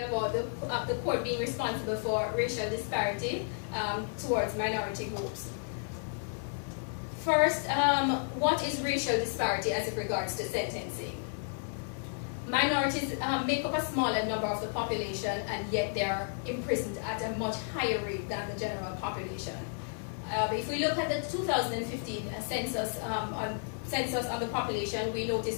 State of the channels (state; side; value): silent; right; digital silence